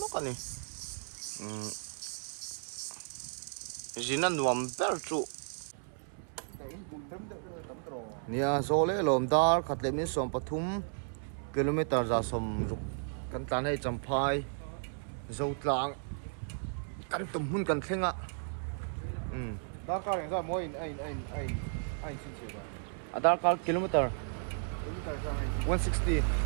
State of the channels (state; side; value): silent; left; 55 dB below the other